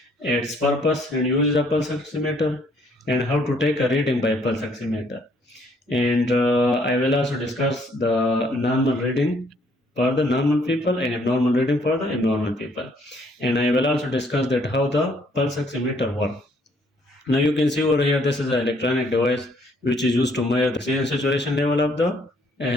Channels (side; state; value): both; normal; correlation 0.65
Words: its purpose and use of pulse oximeter, and how to take a reading by pulse oximeter. And I will also discuss the normal reading for the normal people and abnormal reading for the abnormal people. And I will also discuss that how the pulse oximeter works. Now you can see over here, this is an electronic device which is used to measure the oxygen saturation level of the